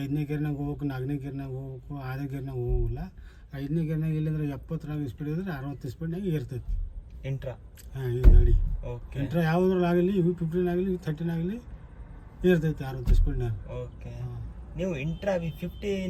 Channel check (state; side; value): identical; both; correlation 1.00